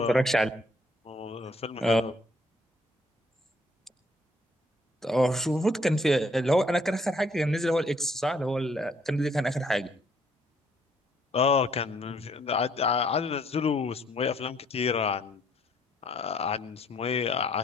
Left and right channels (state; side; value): normal; both; correlation 0.66